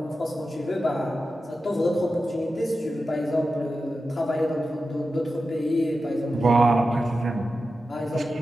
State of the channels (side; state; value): both; normal; correlation 0.92